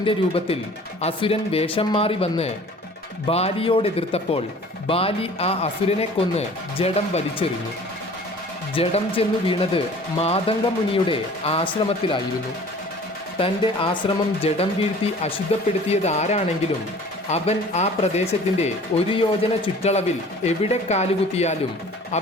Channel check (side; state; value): both; normal; correlation 0.47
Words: രൂപത്തിൽ അസുരൻ വേഷം മാറി വന്ന് ബാലിയോടെതിർത്തപ്പോൾ ബാലി ആ അസുരനെ കൊന്ന് ജഡം വലിച്ചെറിഞ്ഞു. ജഡം ചെന്നു വീണത് മാതംഗമുനിയുടെ ആശ്രമത്തിലായിരുന്നു. തൻ്റെ ആശ്രമം ജഡം വീഴ്ത്തി അശുദ്ധപ്പെടുത്തിയത് ആരാണെങ്കിലും അവൻ ആ പ്രദേശത്തിൻ്റെ 1 യോജന ചുറ്റളവിൽ എവിടെ കാലുകുത്തിയാലും